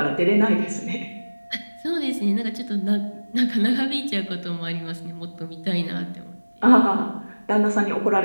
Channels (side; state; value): both; inverted; correlation -1.00